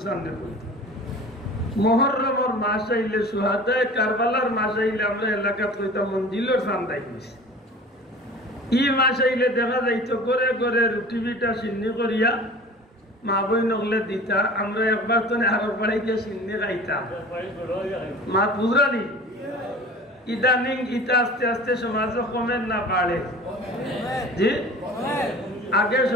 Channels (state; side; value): normal; both; correlation 0.41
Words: সামনে বলতে মুহররমের মাস আইলে সুহাদায়ে কারবালার মাস আইলে আমরা এলাকাত কইতাম মঞ্জিলের সান দাইছি। ই মাস আইলে দেখা যাইতো করে করে রুটি বিটা সিন্নি করিয়া মা বই নগলে দিতা। আমরা একবার তো আরো বাড়াইতে সিন্নি খাইতাম মা বুঝরানি। ইদানিং ইটা আস্তে আস্তে সমাজ কমে না বাড়ে জি। আগে